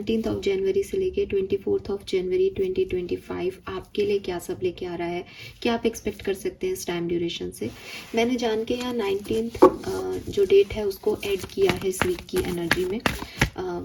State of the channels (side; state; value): both; identical; correlation 1.00